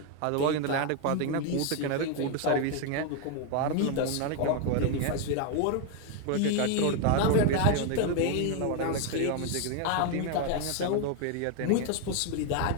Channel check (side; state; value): both; different; correlation 0.01